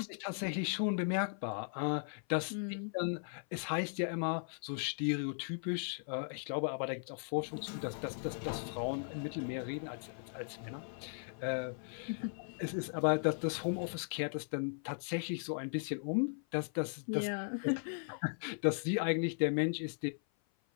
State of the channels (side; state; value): right; silent; 53 dB below the other